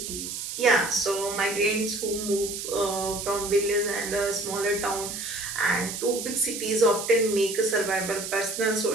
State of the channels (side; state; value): right; noise; hiss, 6 dB below the sound